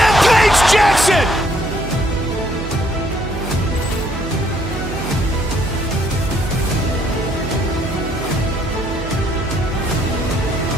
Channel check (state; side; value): noise; right; hum, 8 dB below the sound